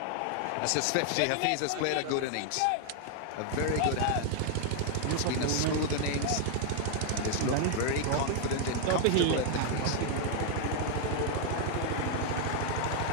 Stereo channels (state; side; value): different; both; correlation 0.00